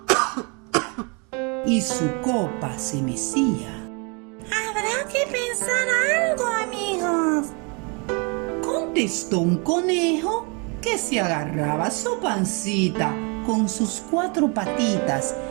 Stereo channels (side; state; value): left; quieter; 32.6 dB